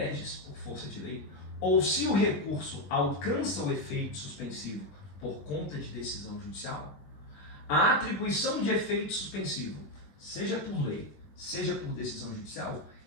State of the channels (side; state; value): right; late; 20 ms